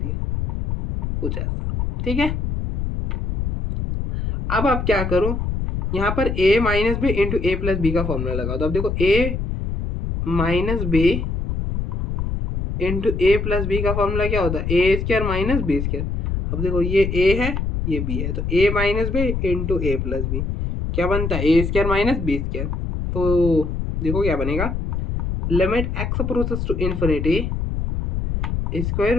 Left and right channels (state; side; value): noise; left; rumble, 2 dB below the sound